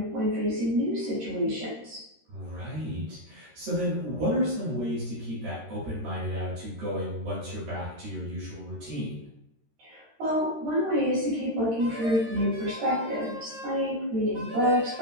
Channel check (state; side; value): late; left; 13 ms